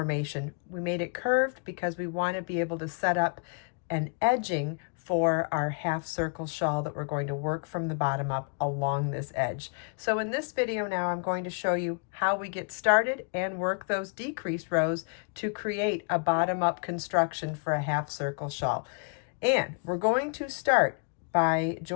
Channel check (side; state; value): right; quieter; 37.1 dB